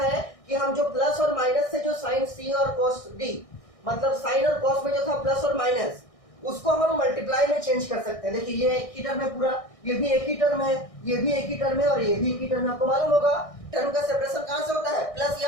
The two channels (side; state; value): right; late; 1.6 ms